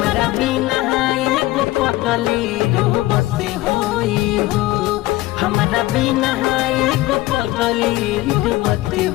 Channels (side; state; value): right; quieter; 17.9 dB